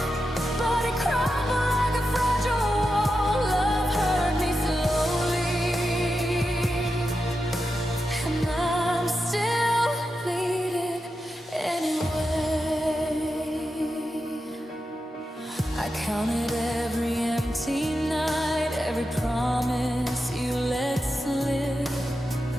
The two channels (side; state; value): both; normal; correlation 0.89